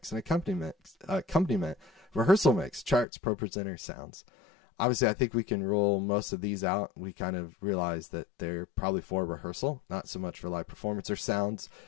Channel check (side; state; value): right; drops out; at 3.1 s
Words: an accompaniment, rehearsal mix, charts, pro presenter, sounds. Obviously, I think we can rule most of these out. We kind of realize that they're probably for rehearsal, not so much for live performance or sounds.